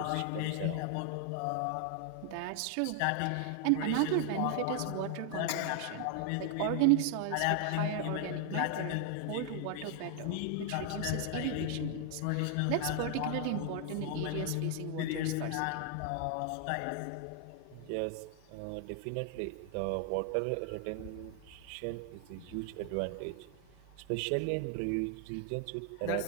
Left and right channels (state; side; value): different; both; correlation 0.00